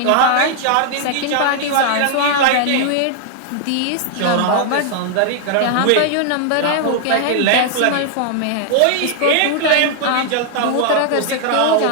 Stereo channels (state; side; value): different; both; correlation 0.00